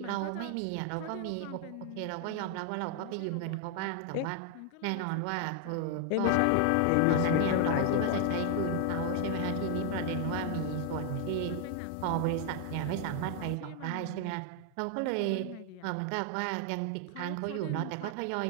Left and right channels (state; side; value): different; both; correlation 0.00